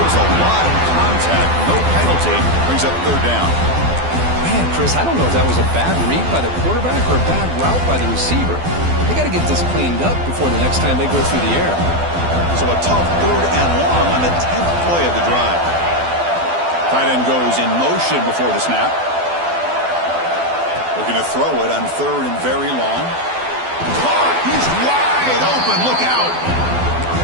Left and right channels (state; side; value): late; left; 12 ms